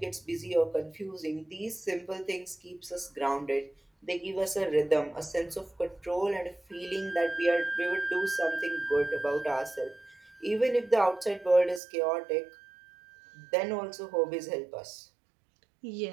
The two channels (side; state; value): left; drops out; at 11.8 s